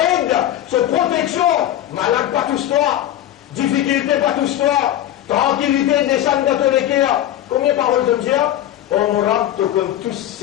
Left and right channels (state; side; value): quieter; right; 12.4 dB